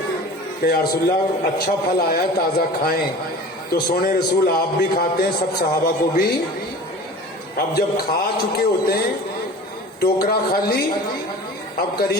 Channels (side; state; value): both; normal; correlation 0.39